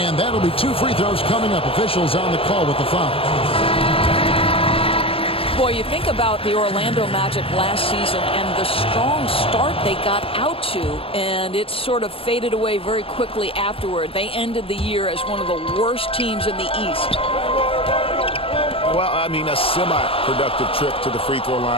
that'll be 2 free throws coming up. Officials on the call with the foul. Boy, you think about the Orlando Magic last season and the strong start they got out to, and it sort of faded away very quickly afterward. They ended the year as one of the worst teams in the East. Well, I mean, a semi-productive trip to the free throw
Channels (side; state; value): right; late; 0.27 ms